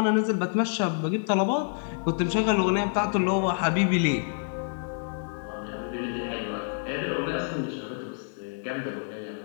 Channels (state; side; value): silent; right; digital silence